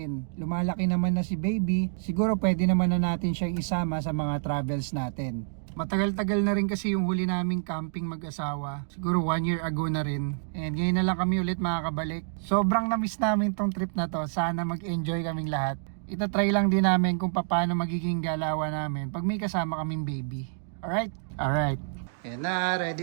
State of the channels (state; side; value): silent; left; digital silence